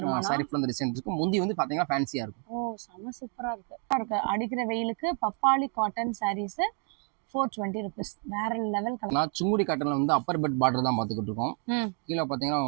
சாரி ஃபுல்லா டிசைன் இருக்கும். முந்தி வந்து பாத்தீங்கன்னா ஃபேன்சியா இருக்கும். ஓ, செம சூப்பரா இருக்கு. அடிக்கிற வெயிலுக்கு பப்பாளி காட்டன் சாரீஸ் 420 rupees. வேற லெவல் கலர். நான் சுங்குடி காட்டன்ல வந்து அப்பர் பெட் பார்டர் தான் பாத்துக்கிட்டு இருக்கோம். கீழே பாத்தீங்கன்னா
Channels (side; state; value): left; quieter; 38.8 dB